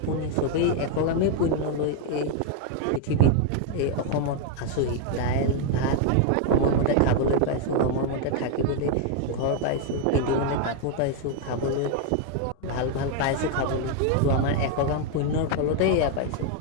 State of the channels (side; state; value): both; different; correlation 0.00